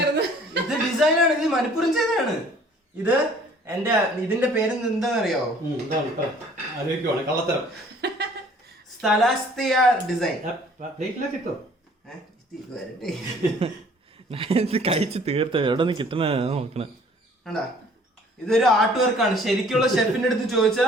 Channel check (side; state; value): both; normal; correlation 0.55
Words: ഇത് ഡിസൈനാണ്, ഇത് മനഃപൂർവ്വം ചെയ്തതാണ്. ഇത് ഇതിന്റെ പേര് എന്താണെന്നറിയാവോ? കള്ളത്തരം. സ്ഥലാസ്തിയ ഡിസൈൻ. കഴിച്ച് തീർത്ത എവിടെ നിന്ന് കിട്ടണ നോക്കണ. ഇതൊരു ആർട്ട് വർക്കാണ്. ശരിക്കുള്ള ഷെഫിന്റെ അടുത്ത്